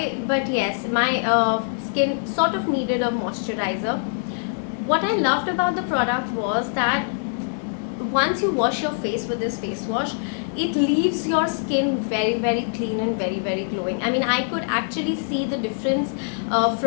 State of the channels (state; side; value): silent; right; 63 dB below the other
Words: but yes, my skin sort of needed a moisturizer. What I loved about the product was that once you wash your face with this face wash, it leaves your skin very clean and very glowing. I mean, I could actually see the difference